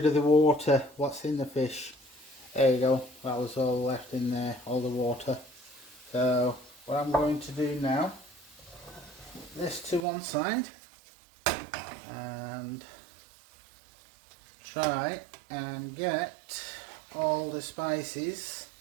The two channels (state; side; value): drops out; left; at 10.0 s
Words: of the water what's in the fish. There you go, that was all left in there, all the water. So what I'm going to do now, put this to one side and try and get all the spices,